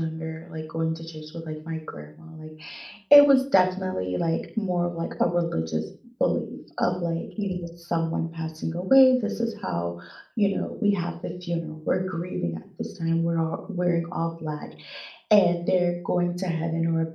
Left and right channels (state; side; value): identical; both; correlation 1.00